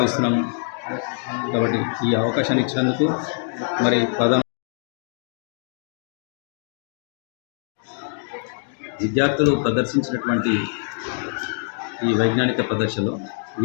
కాబట్టి ఈ అవకాశాన్ని ఇచ్చినందుకు మరి విద్యార్థులు ప్రదర్శించినటువంటి ఈ వైజ్ఞానిక ప్రదర్శనలో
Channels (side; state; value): right; silent; digital silence